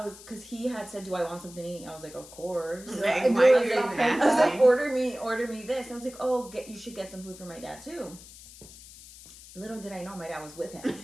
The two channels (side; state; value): left; noise; hiss, 18 dB below the sound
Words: because he had said, do I want something to eat? I was like, of course. Like, I was like, order me this. I was like, oh, you should get some food for my dad too. Little did I know my dad was with him.